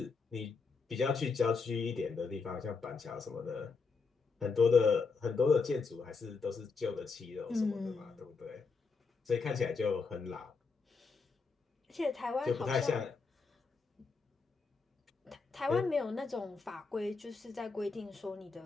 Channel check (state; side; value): quieter; right; 4.6 dB